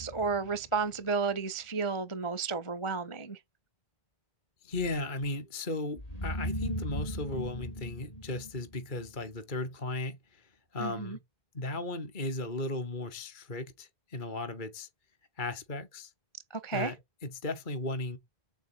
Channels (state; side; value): late; right; 2.2 ms